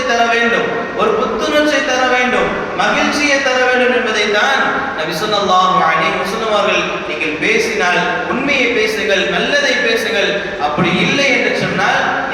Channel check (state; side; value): identical; both; correlation 1.00